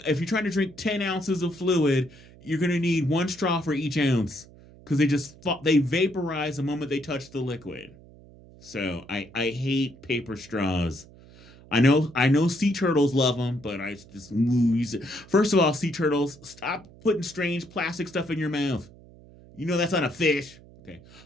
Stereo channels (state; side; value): noise; right; hum, 22 dB below the sound